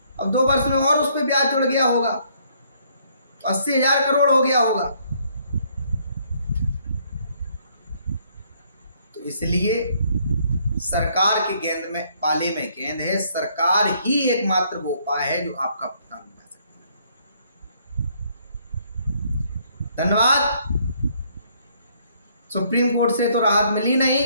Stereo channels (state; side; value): inverted; both; correlation -0.67